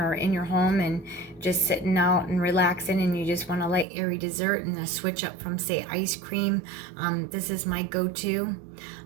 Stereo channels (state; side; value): drops out; left; at 3.9 s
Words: in your home and just sitting out and relaxing, and you just want a light airy dessert and a switch up from, say, ice cream. This is my go-to.